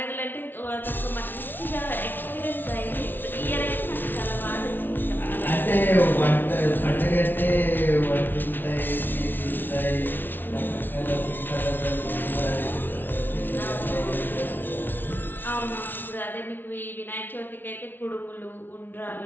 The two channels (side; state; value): right; late; 0.094 ms